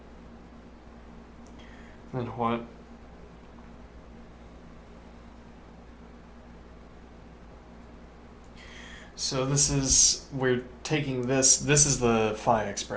Then what? So this is, we're taking this is the phi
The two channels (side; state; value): both; identical; correlation 1.00